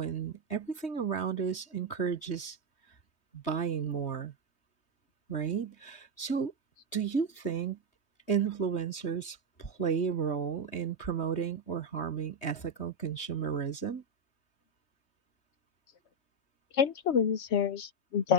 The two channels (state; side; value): late; right; 3.2 ms